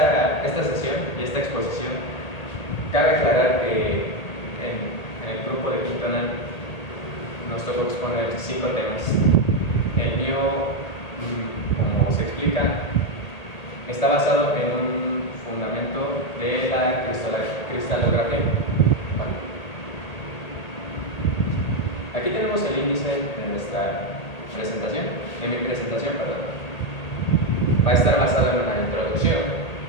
sesión y esta exposición, cabe aclarar que en el grupo de quinto año nos tocó exponer 5 temas. El mío, como se explica, está basado en un fundamento de la cristalografía. Bueno, aquí tenemos el índice de nuestra presentación, de mi presentación, perdón. Va a estar basado en una introducción.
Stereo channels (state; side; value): late; right; 1.8 ms